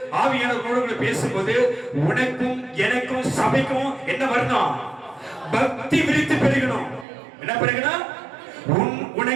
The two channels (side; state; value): left; drops out; at 7.1 s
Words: ஆவியானவரோடு பேசும்போது உனக்கும் எனக்கும் சபைக்கும் என்ன வரணும்? பக்தி விரித்து பெருகணும். என்ன பெருகணும்?